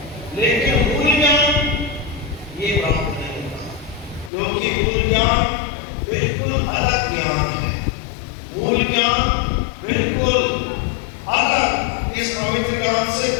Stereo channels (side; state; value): right; drops out; at 4.3 s